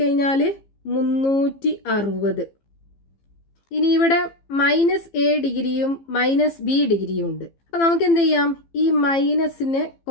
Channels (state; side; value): late; right; 15 ms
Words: 360. ഇനി ഇവിടെ -A ഡിഗ്രിയും -B ഡിഗ്രിയും ഉണ്ട്. അപ്പം നമുക്ക് എന്ത് ചെയ്യാം? ഈ മൈനസിനെ